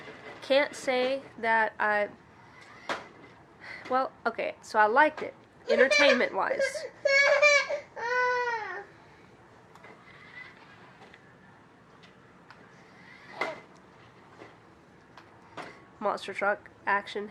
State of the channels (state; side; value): identical; both; correlation 1.00